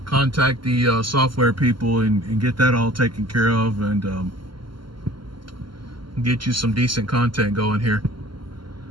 contact the software people and get that all taken care of, and get you some decent content going here.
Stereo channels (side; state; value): left; late; 0.73 ms